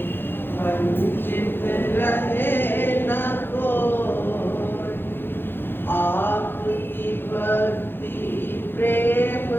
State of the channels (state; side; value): late; right; 0.10 ms